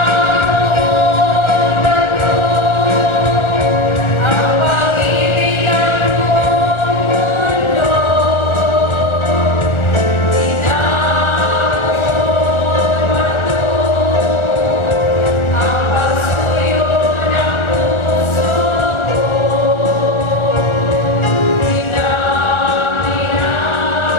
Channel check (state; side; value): late; right; 1.4 ms